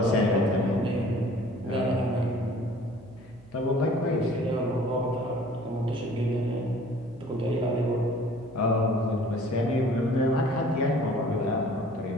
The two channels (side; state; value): right; noise; hum, 24 dB below the sound